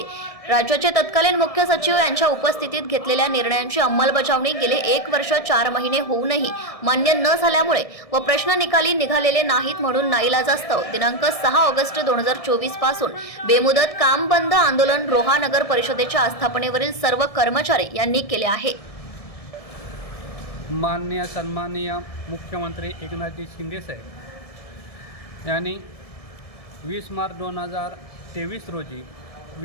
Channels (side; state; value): right; late; 1.7 ms